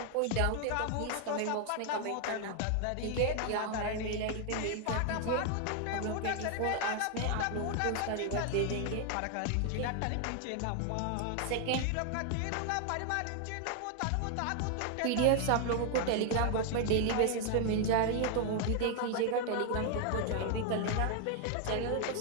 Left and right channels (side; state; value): both; different; correlation 0.00